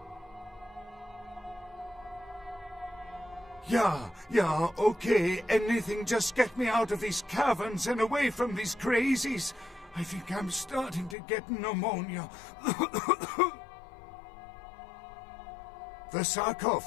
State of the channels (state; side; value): drops out; right; at 11.2 s